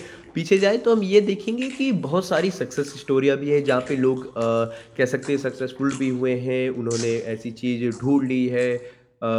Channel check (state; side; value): identical; both; correlation 1.00